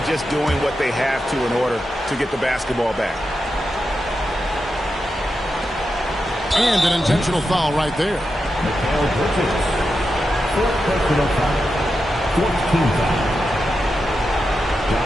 just doing what they have to in order to get the basketball back. And an intentional foul right there.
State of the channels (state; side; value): normal; both; correlation 0.88